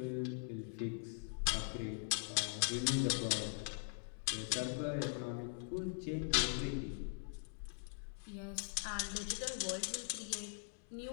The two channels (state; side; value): silent; right; digital silence